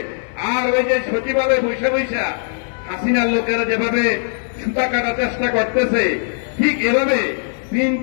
আর ওই যে সচিবালয়ে বৈশা বৈশা হাসিনার লোকেরা যেভাবে সুতা কাটার চেষ্টা করতেছে, ঠিক এভাবে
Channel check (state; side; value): silent; right; 62 dB below the other